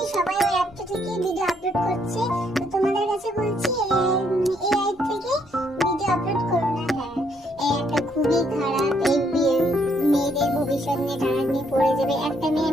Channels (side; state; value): both; normal; correlation 0.71